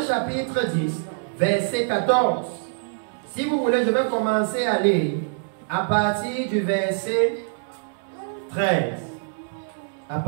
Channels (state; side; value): silent; left; digital silence